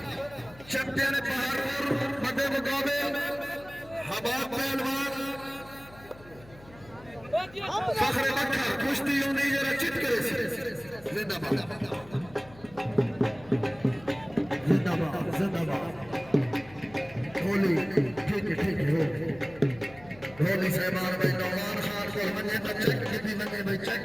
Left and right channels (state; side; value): noise; left; hum, 21 dB below the sound